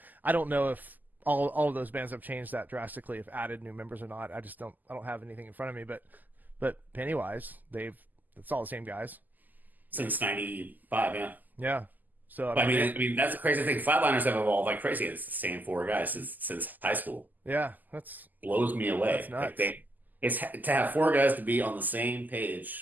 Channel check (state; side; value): late; left; 0.084 ms